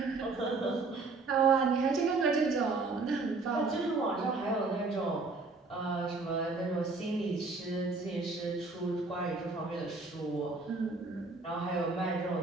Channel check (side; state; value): left; quieter; 3.8 dB